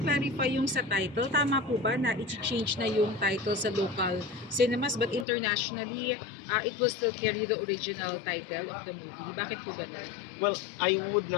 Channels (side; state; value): right; drops out; at 5.2 s